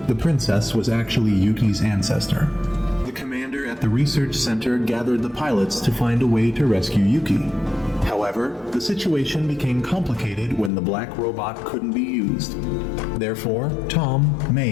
The princess was actually Yuki's ancestor. The commander at the research center gathered the pilots to find a way to rescue Yuki. However, However, the situation became complicated when the black robot couldn't be used. Therefore, Tom,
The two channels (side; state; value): right; drops out; at 10.7 s